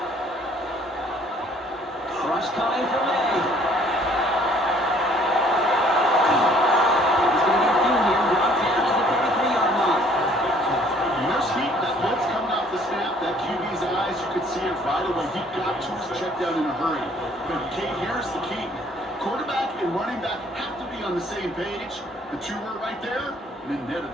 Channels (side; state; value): both; normal; correlation 0.59